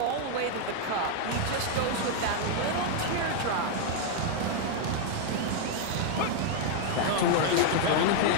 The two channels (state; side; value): different; both; correlation 0.00